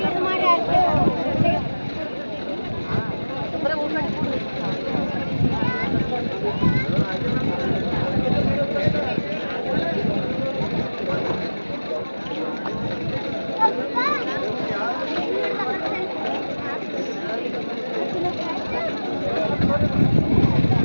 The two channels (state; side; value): inverted; both; correlation -1.00